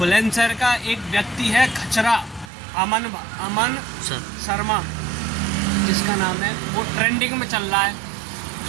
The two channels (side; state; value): left; drops out; at 2.5 s